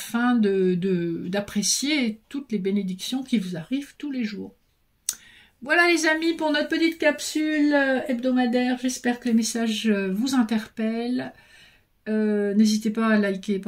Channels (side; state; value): both; identical; correlation 1.00